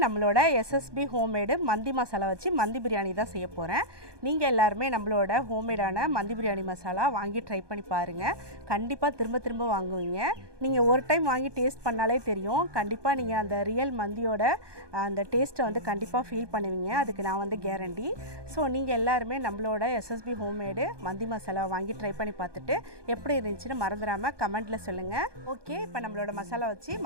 நம்மளோட SSB homemade மந்தி மசாலா வச்சு மந்தி பிரியாணி தான் செய்ய போறேன். நீங்க எல்லாரும் நம்மளோட ஹோம்மேடான மந்தி பிரியாணி மசாலா வாங்கி ட்ரை பண்ணி பாருங்க. கண்டிப்பா திரும்ப வாங்குவீங்க. நீங்க ஒரு டைம் வாங்கி டேஸ்ட் பண்ணாலே தெரியும். கண்டிப்பா நீங்க அந்த ரியல் மந்தியோட அந்த டேஸ்ட்டை வந்து கண்டிப்பா ஃபீல் பண்ணுவீங்க. அதுக்கு நான் வந்து கேரண்டி. சோ நீங்க எல்லாரும் நம்மளோட SSB ஹோம்மேட் மந்தி மசாலா வாங்கி ட்ரை பண்ணி பார்த்துட்டு எப்படி இருந்துச்சுன்னு மறந்துடாம கமெண்ட்ல சொல்லுங்க. ஓகே, இப்போ நம்மளோட மசாலா வச்சு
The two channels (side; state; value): left; late; 1.2 ms